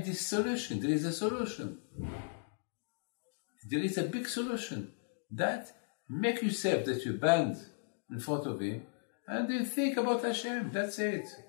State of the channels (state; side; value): silent; right; digital silence